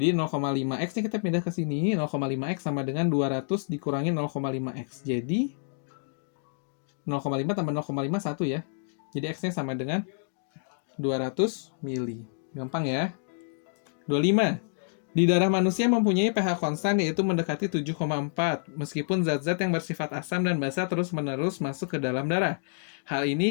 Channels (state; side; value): silent; right; digital silence